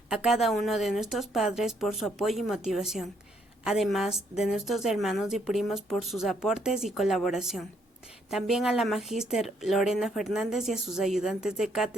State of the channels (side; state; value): both; normal; correlation 0.71